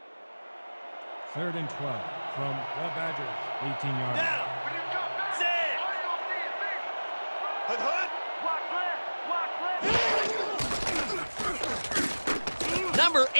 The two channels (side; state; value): both; inverted; correlation -1.00